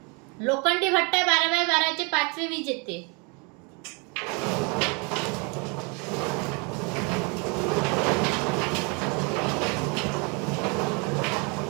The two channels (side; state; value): left; quieter; 32.0 dB